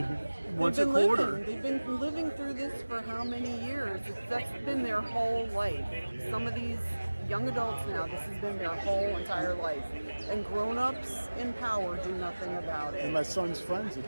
once a quarter. They've been living through this for how many years? That's been their whole life. Some of these young adults now, this has been their whole entire life. And grown-ups in power do nothing about it. And my son's friend's a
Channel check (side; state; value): both; inverted; correlation -1.00